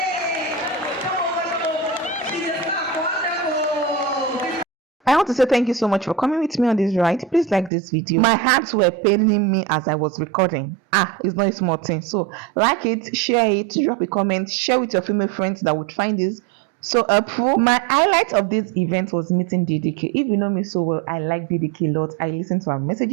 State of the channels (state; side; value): drops out; left; at 7.7 s